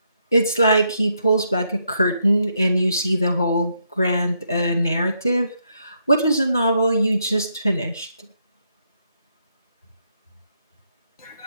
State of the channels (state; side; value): inverted; both; correlation -0.77